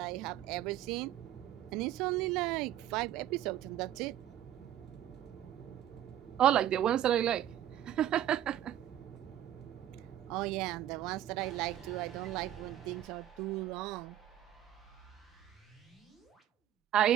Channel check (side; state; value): left; quieter; 11.7 dB